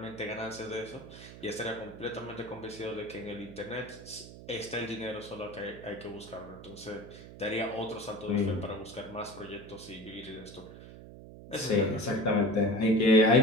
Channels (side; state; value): right; noise; hum, 15 dB below the sound